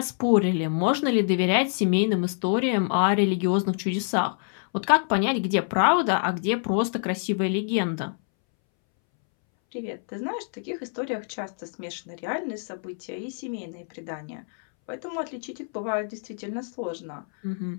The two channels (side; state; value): right; silent; 61 dB below the other